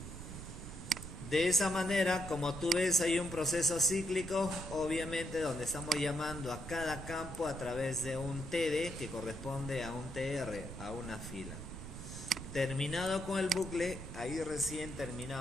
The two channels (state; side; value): noise; right; rumble, 10 dB below the sound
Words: De esa manera, como tú ves, hay un proceso cíclico, obviamente, donde estamos llamando a cada campo a través de un td que corresponde a un tr, a una fila. Terminado con el bucle, ahí recién